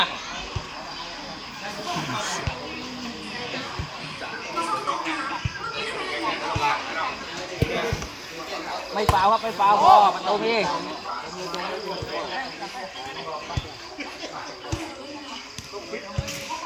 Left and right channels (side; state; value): both; identical; correlation 1.00